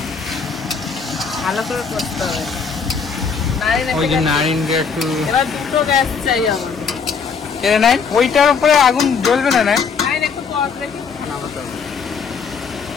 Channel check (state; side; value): quieter; right; 5.8 dB